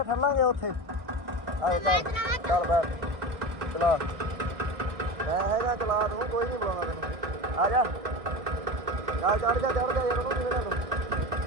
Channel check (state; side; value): late; left; 1.6 ms